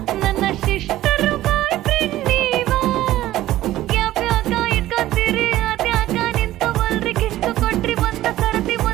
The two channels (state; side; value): quieter; left; 14.8 dB